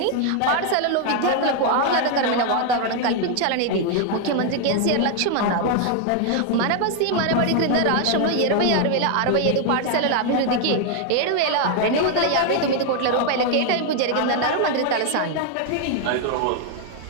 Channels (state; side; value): different; both; correlation 0.00